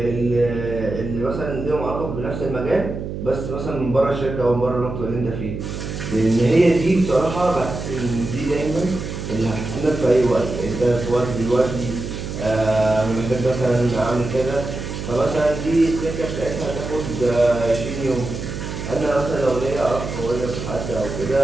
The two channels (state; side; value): noise; right; hum, 6 dB below the sound